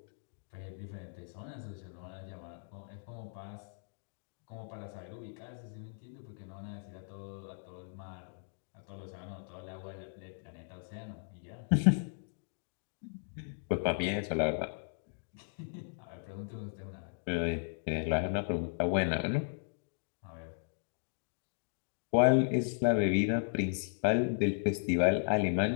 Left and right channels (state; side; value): silent; right; digital silence